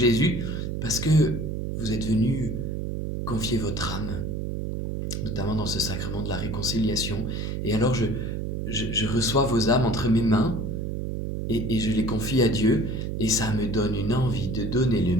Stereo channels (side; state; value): right; noise; hum, 3 dB below the sound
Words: parce que vous êtes venus confier votre âme, notamment dans ce sacrement de la réconciliation. Et alors je reçois vos âmes entre mes mains et je les confie à Dieu, et ça me donne une envie de donner le